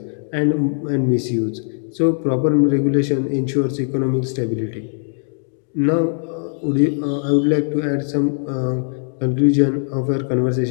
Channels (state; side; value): silent; right; digital silence